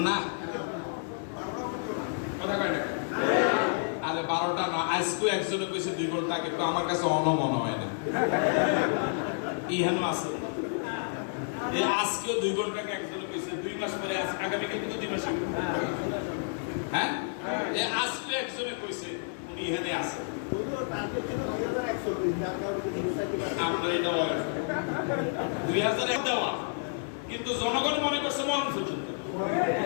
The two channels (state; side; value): silent; right; digital silence